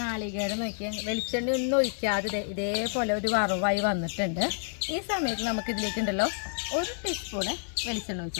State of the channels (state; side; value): silent; right; digital silence